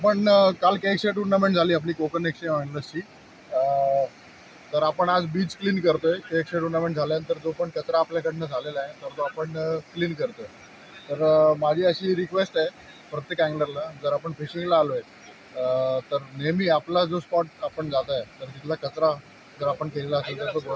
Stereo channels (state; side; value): identical; both; correlation 1.00